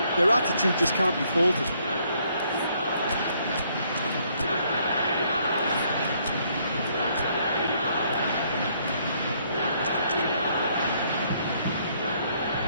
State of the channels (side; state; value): both; inverted; correlation -0.68